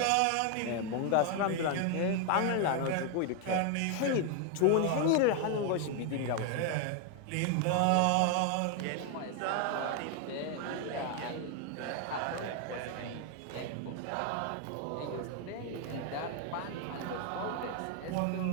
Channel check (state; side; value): different; both; correlation 0.00